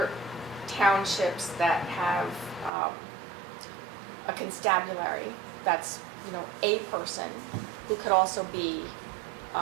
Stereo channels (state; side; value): drops out; left; at 2.7 s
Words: townships that have a constabulary that's, a person who could also be,